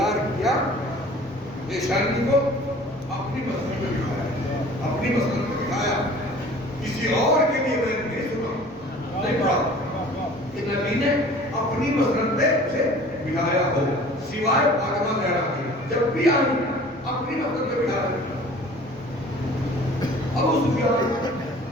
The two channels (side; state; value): both; normal; correlation 0.47